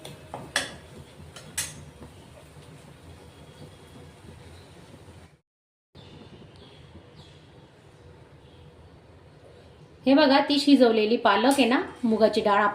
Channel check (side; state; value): both; identical; correlation 1.00